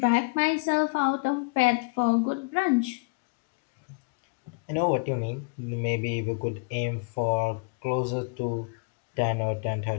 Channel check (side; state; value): right; quieter; 30.6 dB